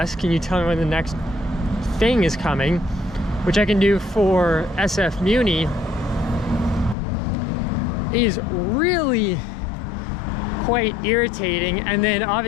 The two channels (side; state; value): right; drops out; at 7.0 s